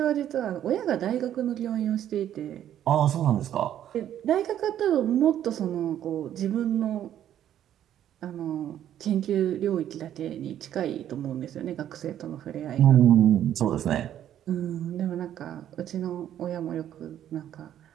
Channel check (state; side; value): quieter; left; 11.0 dB